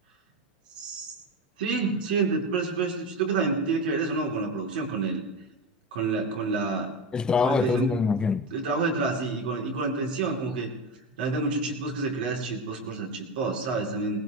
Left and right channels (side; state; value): both; normal; correlation 0.19